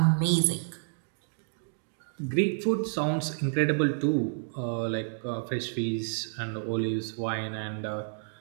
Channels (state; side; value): silent; left; digital silence